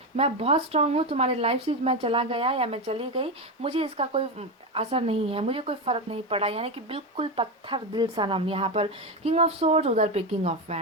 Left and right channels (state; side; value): normal; both; correlation 0.14